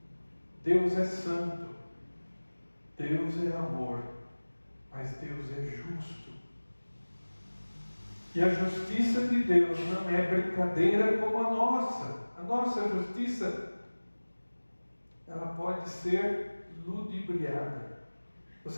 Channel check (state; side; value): inverted; both; correlation -1.00